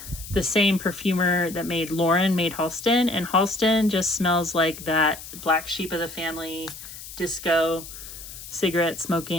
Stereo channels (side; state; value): left; noise; hiss, 13 dB below the sound